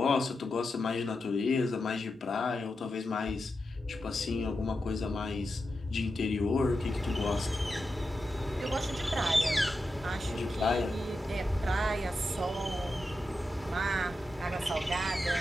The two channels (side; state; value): both; normal; correlation 0.89